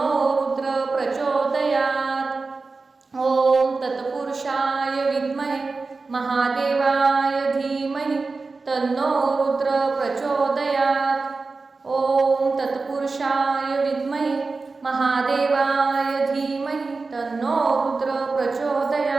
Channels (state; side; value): quieter; left; 4.0 dB